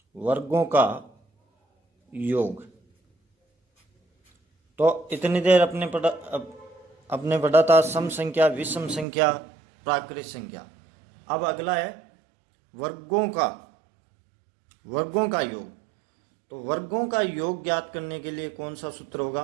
वर्गों का योग। तो इतनी देर अपने पढ़ा था सम संख्या, विषम संख्या, प्राकृत संख्या। अब अगला है वर्गों का योग। तो वर्गों का योग ज्ञात करने के लिए कौन सा सूत्र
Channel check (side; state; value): left; drops out; at 9.1 s